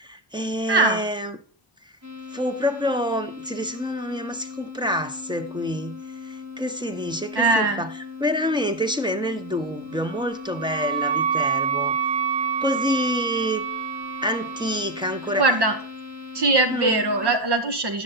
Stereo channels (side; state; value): both; normal; correlation 0.13